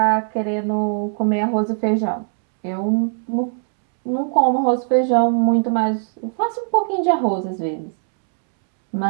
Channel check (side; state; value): left; silent; 66 dB below the other